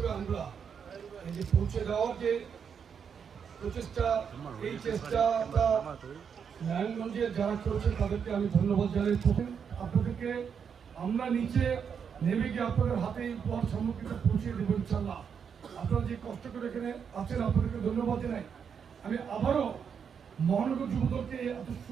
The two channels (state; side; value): quieter; left; 7.0 dB